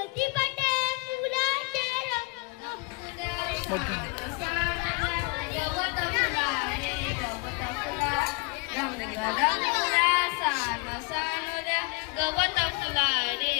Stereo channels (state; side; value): quieter; right; 29.3 dB